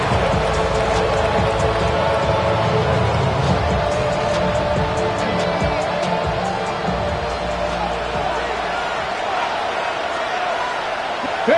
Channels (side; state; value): both; identical; correlation 1.00